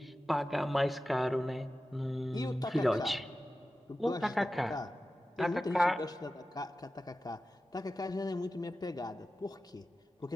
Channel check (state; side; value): normal; both; correlation 0.94